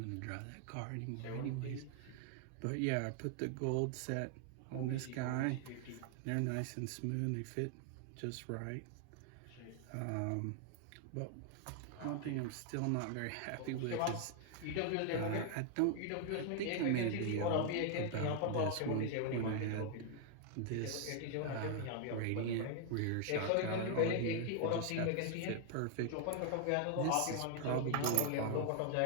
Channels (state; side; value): different; both; correlation 0.00